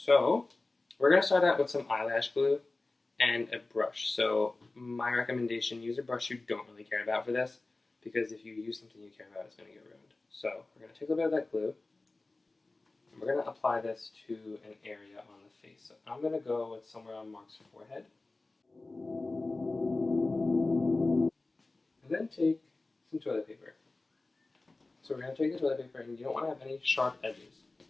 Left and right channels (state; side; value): quieter; right; 3.2 dB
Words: So we're going to start out with some eyelash glue and a brush. So my recommendation, use a brush you don't really care about for this, because if you use something you care about, it's going to get ruined. So we're going to take a little bit of that glue, and we're going to apply this to an area on the face. So I'm going to go with somewhere on Mark's forehead. And then take some toilet paper. So we're going to take the toilet paper, and you don't want to have any sharp edges.